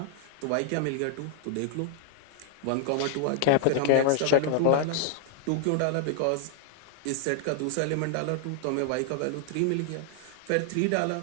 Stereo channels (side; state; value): both; different; correlation 0.00